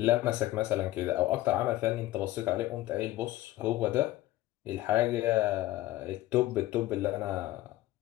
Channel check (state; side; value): quieter; right; 16.3 dB